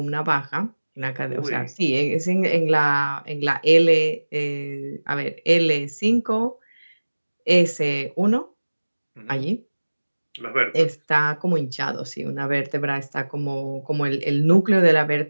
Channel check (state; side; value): inverted; both; correlation -1.00